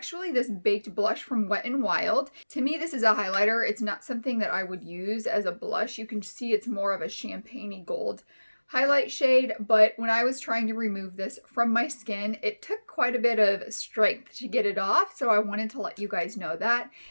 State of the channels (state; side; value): inverted; both; correlation -1.00